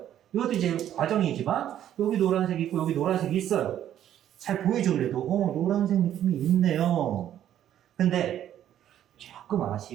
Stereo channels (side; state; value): left; quieter; 11.1 dB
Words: 이것도 이제 과정이지만 여기 노란색이 있고 여기 노란색이 있어요. 잘 보이죠? 그래도 노란색 느낌이 있네요. 근데 조금